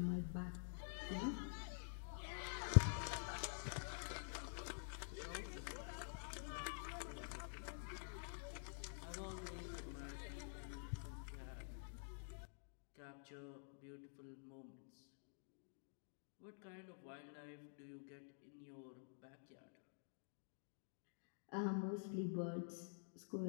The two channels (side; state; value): right; silent; digital silence